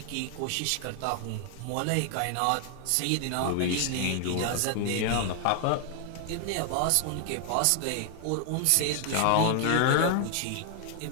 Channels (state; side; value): different; both; correlation 0.00